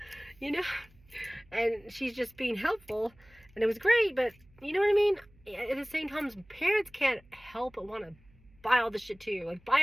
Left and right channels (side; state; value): right; noise; hum, 28 dB below the sound